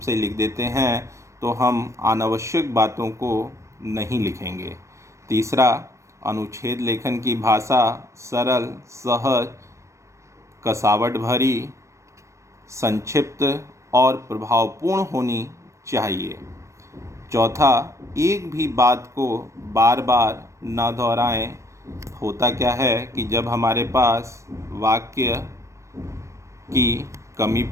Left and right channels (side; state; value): left; late; 0.15 ms